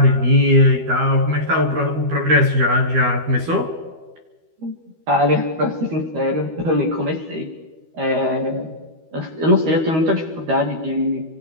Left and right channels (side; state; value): left; late; 13 ms